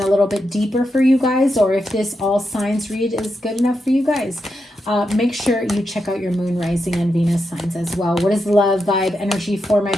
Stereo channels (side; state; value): both; normal; correlation 0.85